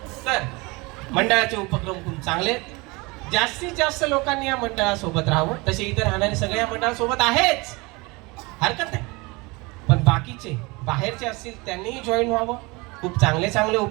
तर मंडळाचे उपक्रम खूप चांगले. जास्तीत जास्त लोकांनी या मंडळासोबत राहावं. तसे इतर राहणारे सगळे या मंडळासोबत आहेच, हरकत नाही. पण बाकीचे बाहेरचे असतील त्यांनीही जॉईन व्हावं. खूप चांगले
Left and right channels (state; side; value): quieter; left; 25.4 dB